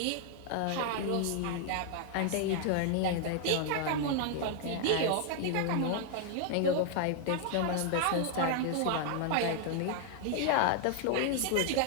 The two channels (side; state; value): both; different; correlation 0.00